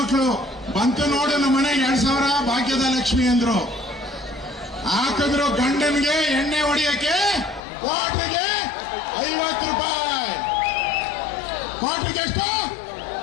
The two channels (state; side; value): drops out; right; at 7.6 s